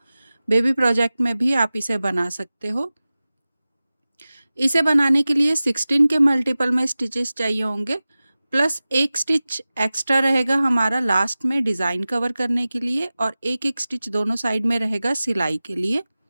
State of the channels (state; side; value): inverted; both; correlation -0.97